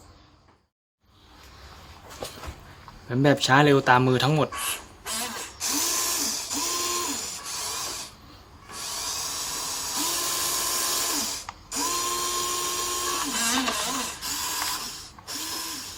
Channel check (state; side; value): identical; both; correlation 1.00